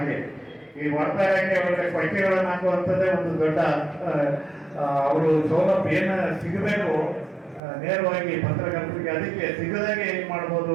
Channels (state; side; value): drops out; left; at 7.6 s